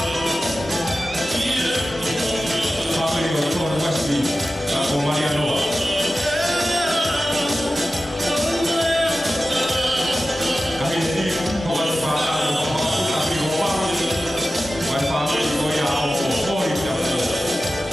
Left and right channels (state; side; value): normal; both; correlation 0.94